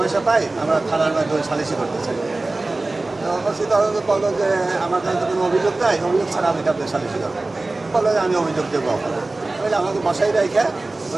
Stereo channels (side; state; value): left; quieter; 3.1 dB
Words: পাই, আমরা থানার মাধ্যমে সালিশি করতে চাই। তো ওসি তদন্ত বললো যে আমার কাছে তো কোনো অভিযোগ নাই, অভিযোগ ছাড়া আমি কাউকে সালিশি করবো। বললো যে আমি অভিযোগ দেবো আপনার। তাহলে আমাকে বসাই রেখে